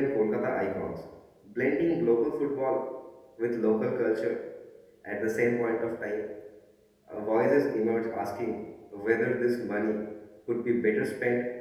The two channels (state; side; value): identical; both; correlation 1.00